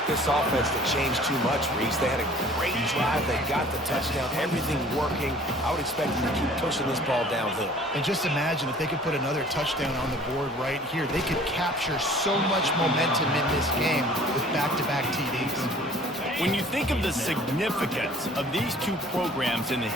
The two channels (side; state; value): both; normal; correlation 0.51